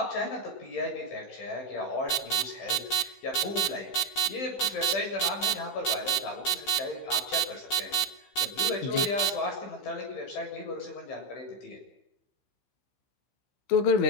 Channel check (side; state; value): right; late; 15 ms